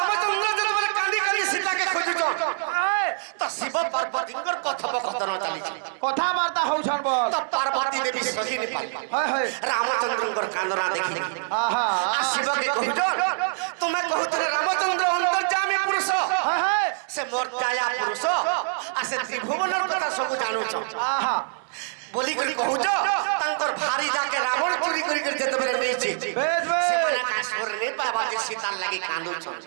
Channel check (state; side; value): silent; left; digital silence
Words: যেতবেলে কান্দি কান্দি সীতাকে খুঁজুছ আয় তো শিব পার্বতীঙ্কর কথোপকথন চালিছে কথাবার্তা হউছন বল তো পার্বতী দেবী সহি নি পারবা হয় হয় রামচন্দ্রঙ্কর কান্দনা দেখি আহা আর শিবকে কহুছ তুমি কহুছিলে রামচন্দ্র অন্তর্যামী পুরুষ হয় হয় সে মোর দয়া পুরুষ আর সে ত্রিভুবনের কথা সবু জানুছ আহা বলি করে কহুছ তাঙ্কর ভারি যাকে রাবণ চুরি করি করে যেতবেলে নেইছে বেশ বেশ ସେମାନେ କାଶ୍ମୀର ନେଇ ପାଇବା ଯେ ସୀତାର ଲାଗି କାନ୍ଦୁଛନ୍